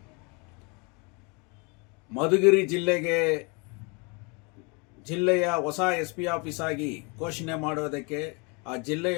ಮಧುಗಿರಿ ಜಿಲ್ಲೆಯ ಹೊಸ SP ಆಫೀಸ್ ಆಗಿ ಘೋಷಣೆ ಮಾಡುವುದಕ್ಕೆ, ಆ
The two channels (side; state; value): right; quieter; 31.5 dB